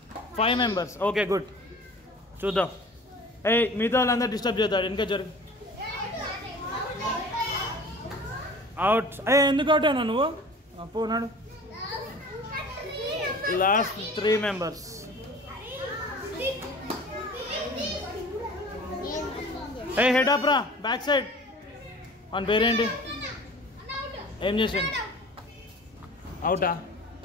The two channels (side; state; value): both; normal; correlation 0.43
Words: 5 members. Okay good. చూద్దాం. మిగతా వాళ్ళందరూ డిస్టర్బ్ చేస్తాడు. ఇంకా జరుగు. అవుట్. ఎందుకు అవుట్ అయినా నువ్వు? పోనాడు. Last 3 members. హెడ్ అప్ రా, బ్యాక్ సైడ్. వన్ పేరేంటి? ఏం చేసిండు? అవుటా?